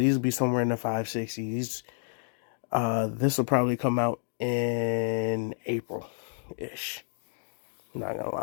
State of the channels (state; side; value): silent; right; digital silence